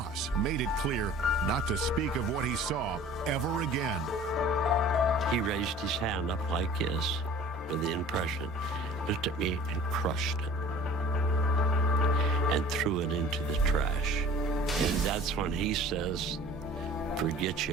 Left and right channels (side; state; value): both; normal; correlation 0.46